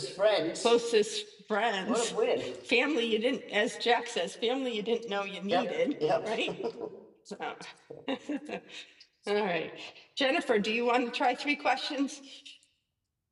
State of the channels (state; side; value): identical; both; correlation 1.00